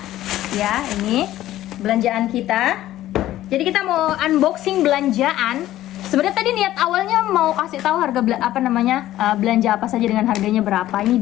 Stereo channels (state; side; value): quieter; right; 14.1 dB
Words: ya. Ini belanjaan kita. Jadi kita mau unboxing belanjaan. Sebenarnya tadi niat awalnya mau kasih tahu harga belanja apa saja dengan harganya berapa. Ini